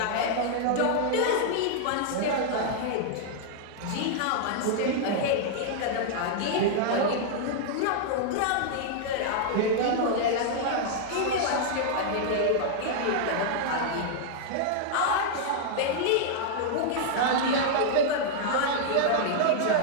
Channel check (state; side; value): different; both; correlation -0.01